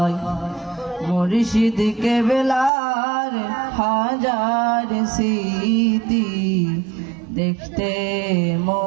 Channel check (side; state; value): left; drops out; at 2.7 s